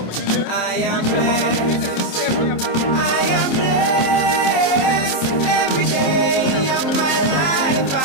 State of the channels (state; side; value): late; right; 27 ms